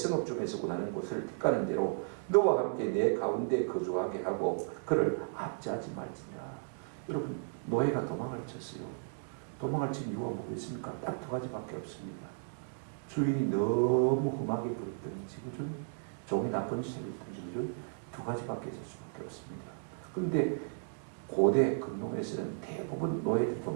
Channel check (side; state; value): left; silent; digital silence